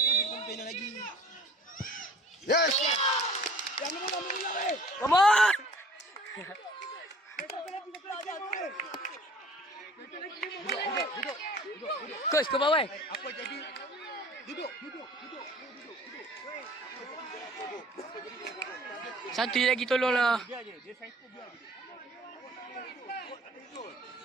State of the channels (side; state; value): both; normal; correlation 0.49